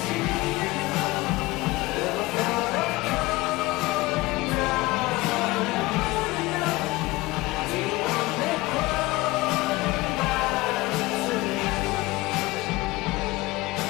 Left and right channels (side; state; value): right; quieter; 20.6 dB